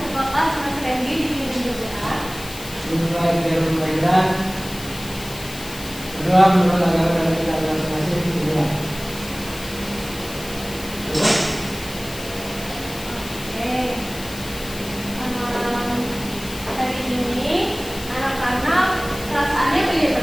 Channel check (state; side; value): noise; left; hiss, 13 dB below the sound